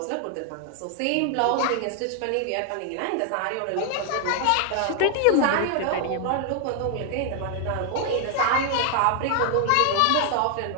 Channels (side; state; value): both; different; correlation 0.00